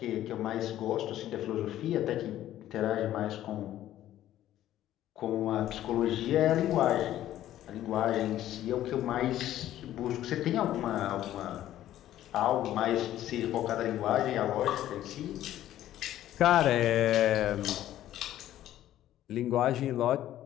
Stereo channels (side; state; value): right; quieter; 12.9 dB